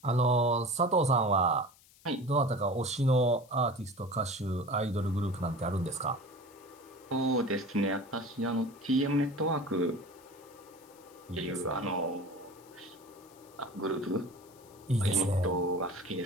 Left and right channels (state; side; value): noise; left; hiss, 26 dB below the sound